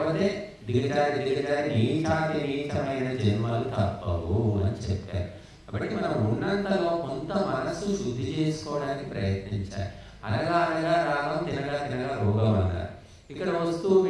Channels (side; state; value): both; identical; correlation 1.00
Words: దిగజారి నీచాతి నీచమైన జన్మలు తప్పవు అని చెప్పారు. కాబట్టి మనం ఉన్నంతలో కొంత మనసు శుద్ధి చేసుకోవడానికి ప్రయత్నించాలి. అనగా అనగా రాగం, తినగా తినగా రోగం అన్నారు. ఇక్కడ వస్తూ